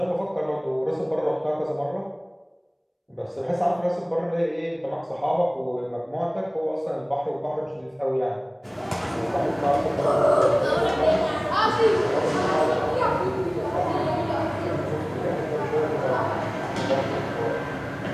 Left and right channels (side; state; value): both; identical; correlation 1.00